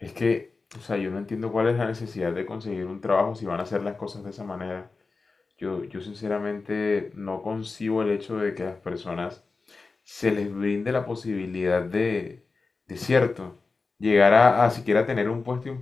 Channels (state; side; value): quieter; right; 4.1 dB